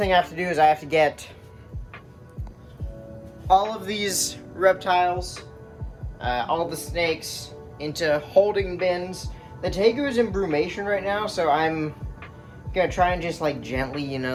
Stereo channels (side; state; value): both; identical; correlation 1.00